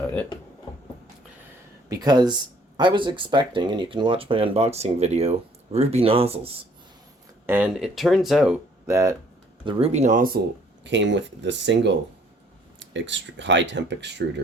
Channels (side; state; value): both; normal; correlation 0.60